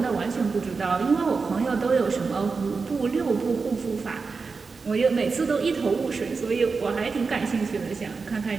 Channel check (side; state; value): left; quieter; 4.6 dB